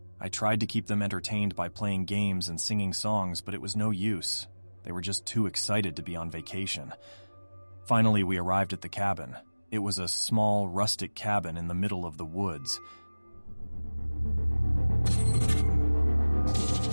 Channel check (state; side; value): inverted; both; correlation -1.00